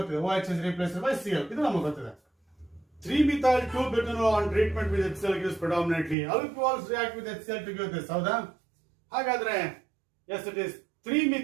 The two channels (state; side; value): drops out; left; at 6.2 s